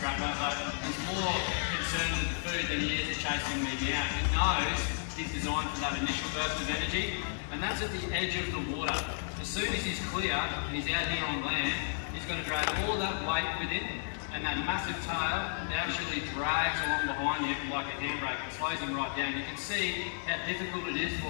but he's more concerned with the food than he is chasing me down. He knows he's designed for that initial burst of energy, and that's at the edge of the water. As soon as he's clear and he's out here on land, he's going to drag all that weight with him, and that massive tail actually drags along behind him like a handbrake and slows him right down. You can see how difficult it is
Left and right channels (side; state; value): right; silent; digital silence